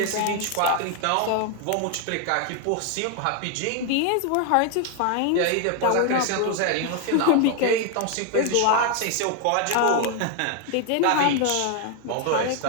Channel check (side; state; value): both; different; correlation 0.01